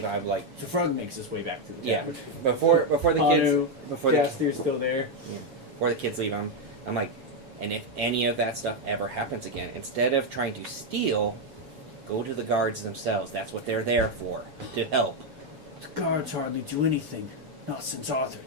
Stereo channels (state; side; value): late; left; 7.6 ms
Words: I'm like, So Frog makes his way back to the yeah. tavern. Before the kids, Hanu, before the Jaster's still there. before the kids leave, I'm like, and if any of that stuff ever happens again, instead of trying to steal, go to the guards themselves. That's what they're there for, to help. The guards hardly do anything. Not since Arthur